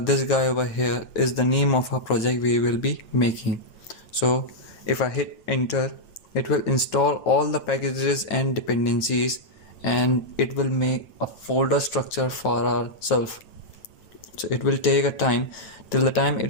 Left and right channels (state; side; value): late; right; 9.0 ms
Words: guy over here is the name of our project we will be making. So if I hit enter, it will install all the packages and dependencies, and it will make a folder structure for ourselves. So it will take a time. Till the time